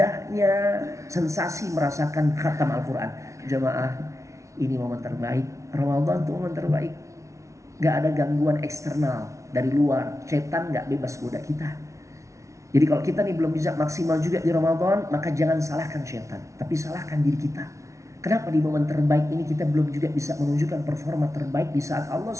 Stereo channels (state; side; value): late; left; 0.14 ms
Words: sensasi merasakan khatam Al-Quran. Jamaah, ini momen terbaik. Ramadan itu momen terbaik. Gak ada gangguan eksternal dari luar. Setan gak bebas goda kita. Jadi kalau kita nih belum bisa maksimal juga di Ramadan, maka jangan salahkan setan, tapi salahkan diri kita. Kenapa di momen terbaik ini kita belum juga bisa menunjukkan performa terbaik di saat Allah